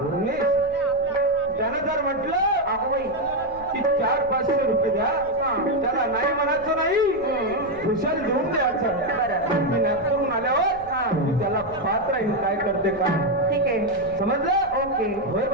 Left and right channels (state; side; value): noise; left; rumble, 19 dB below the sound